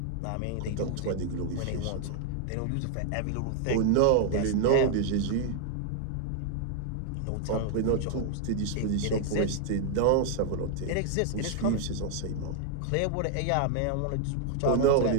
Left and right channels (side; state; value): both; different; correlation 0.00